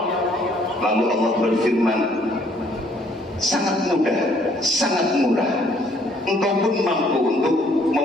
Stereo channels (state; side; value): normal; both; correlation 0.63